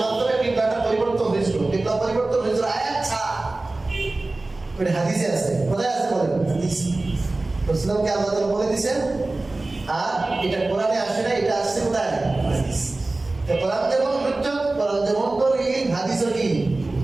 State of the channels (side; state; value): left; quieter; 3.1 dB